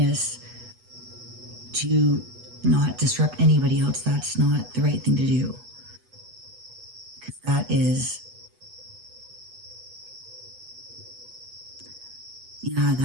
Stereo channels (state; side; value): late; left; 8.1 ms